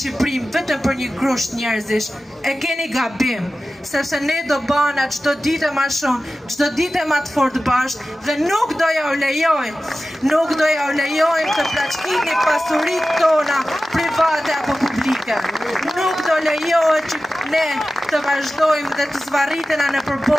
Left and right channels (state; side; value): normal; both; correlation 0.95